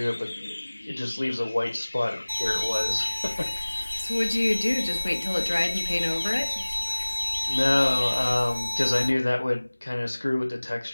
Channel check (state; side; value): inverted; both; correlation -1.00